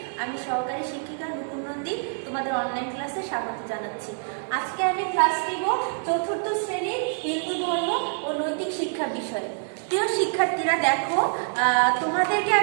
আমি সহকারী শিক্ষিকা নুপুর নন্দী তোমাদের অনলাইন ক্লাসে স্বাগত জানাচ্ছি। আজকে আমি ক্লাস নিব চতুর্থ শ্রেণীর হিন্দু ধর্ম ও নৈতিক শিক্ষা বিষয়ে। প্রিয় শিক্ষার্থীরা দেখো, তোমাদেরকে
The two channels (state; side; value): silent; left; digital silence